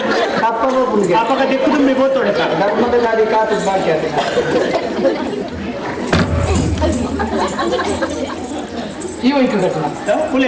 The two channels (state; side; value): identical; both; correlation 1.00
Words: ಅಪ್ಪಗ ದಿಕ್ಕು ತುಂಬಿ ಬೋತೋಡೆ ಧರ್ಮದ ಗಾಡಿ ಕಾತು ಬಾಕಿ ಅದು ಈ ವೈಕು ಘಟನಾ